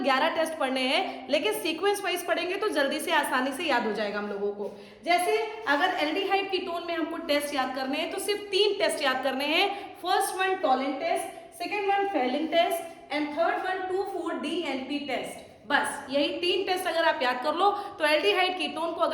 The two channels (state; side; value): identical; both; correlation 1.00